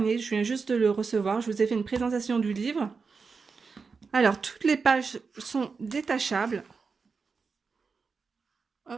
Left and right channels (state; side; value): quieter; left; 5.0 dB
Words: je viens juste de le recevoir, je vous ai fait une présentation du livre. Alors toutes les pages sont détachables.